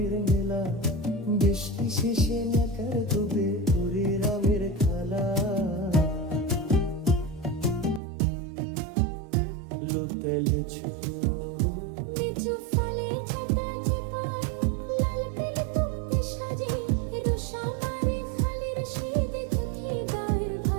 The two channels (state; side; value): drops out; left; at 8.0 s